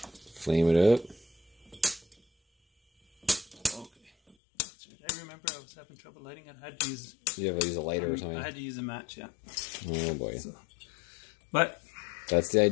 Flame it up. Okay. I remember I was having trouble lighting it. I had to use... You have to use a lighter or something? I had to use a match, yeah. Oh boy. So, but... That's the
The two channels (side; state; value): right; drops out; at 4.4 s